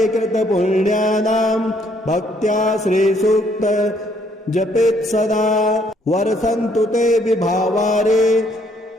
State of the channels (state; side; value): normal; both; correlation 0.67